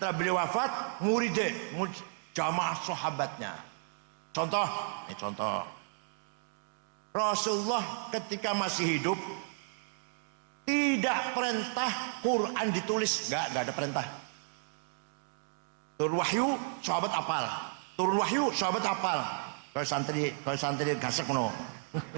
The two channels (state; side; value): silent; left; digital silence